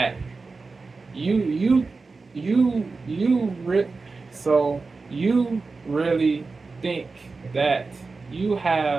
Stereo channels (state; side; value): quieter; left; 4.1 dB